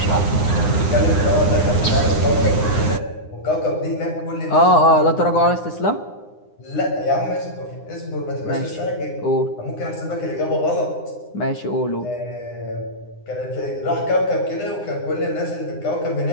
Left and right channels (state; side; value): late; right; 9.8 ms